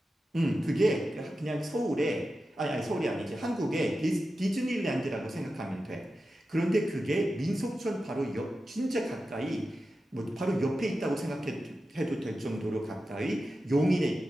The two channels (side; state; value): both; normal; correlation 0.92